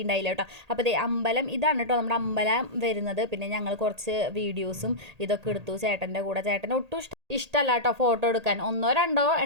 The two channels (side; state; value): left; late; 1.8 ms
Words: കേട്ടോ. അപ്പോൾ ദേ അമ്പലം ഇതാണ് കേട്ടോ നമ്മുടെ അമ്പലം വരുന്നത്. പിന്നെ ഞങ്ങൾ കുറച്ച് വീഡിയോസും ഇതൊക്കെ എടുത്തു ചേട്ടൻ്റെ കൂടെ. ചേട്ടന് ഒട്ടും ഇഷ്ടമല്ല കേട്ടോ ഫോട്ടോ എടുക്കാൻ. 1-2